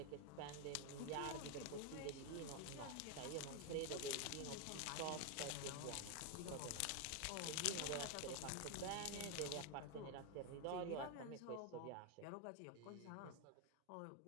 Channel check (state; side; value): different; both; correlation 0.01